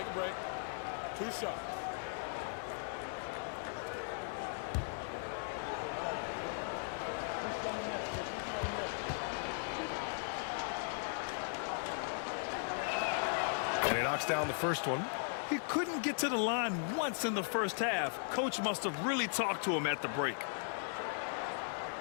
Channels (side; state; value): right; silent; digital silence